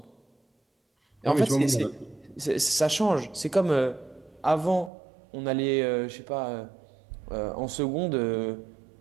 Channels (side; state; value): left; drops out; at 4.9 s